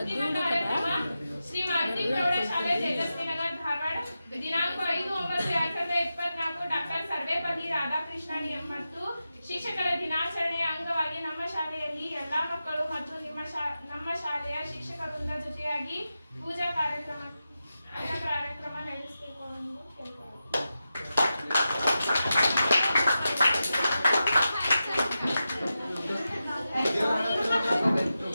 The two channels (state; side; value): inverted; both; correlation -0.91